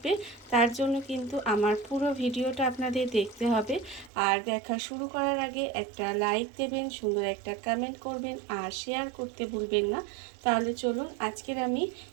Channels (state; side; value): drops out; left; at 4.1 s